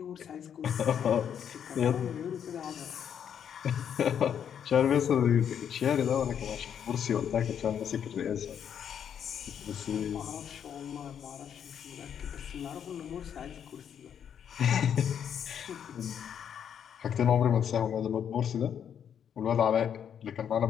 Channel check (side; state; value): right; quieter; 8.5 dB